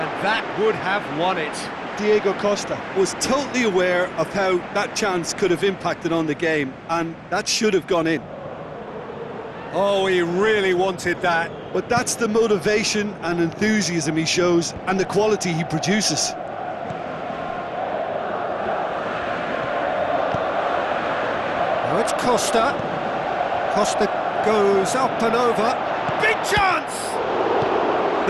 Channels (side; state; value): both; identical; correlation 1.00